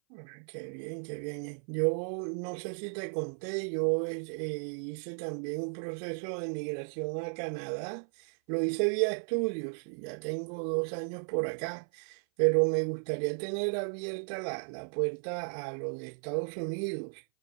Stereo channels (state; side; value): silent; left; 55 dB below the other